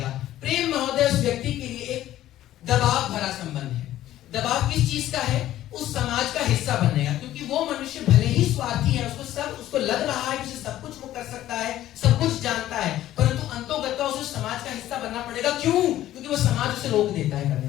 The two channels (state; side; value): quieter; right; 13.6 dB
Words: प्रेम महोदय उस व्यक्ति के लिए एक दबाव भरा संबंध है। दबाव किस चीज का है? उस समाज का हिस्सा बनने का, क्योंकि वो मनुष्य भले ही स्वार्थी है, उसको लग रहा है कि उसे सब कुछ वो कर सकता है, सब कुछ जानता है, परंतु अंतोगत्वा उसे समाज का हिस्सा बनना पड़ेगा। क्यों? क्योंकि वो समाज उसे रोक देता है करने